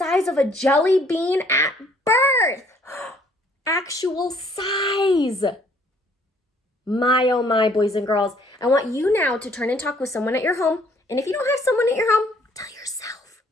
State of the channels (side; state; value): both; normal; correlation 0.62